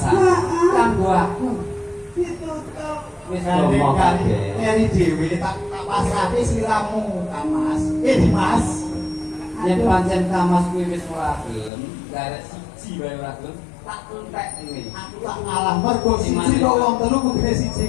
kanggo aku wis ngomong kabeh. Ini dhewe tak pasrahke sliramu Kamas. Dimas. Yen pancen Kamas kuwi wis ora gelem, garek siji wae ora gelem, tak entek ngene. Aku tak ngalah mergo siji kok wong telu kudune siji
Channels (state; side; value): drops out; right; at 11.7 s